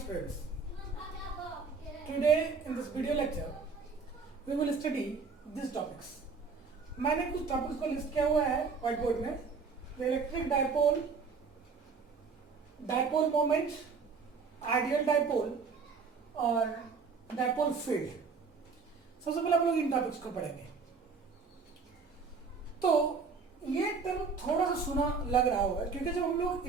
Today in this video lecture we will study these topics. मैंने कुछ topics को list किया हुआ है व्हाइट बोर्ड में. Electric dipole, dipole moment, ideal dipole और डायपोल फील्ड. सबसे पहले हम लोग इन टॉपिक्स को पढ़ेंगे. तो ये टर्म थोड़ा सा सुना लग रहा होगा क्योंकि जब हम लोग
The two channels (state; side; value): quieter; left; 5.1 dB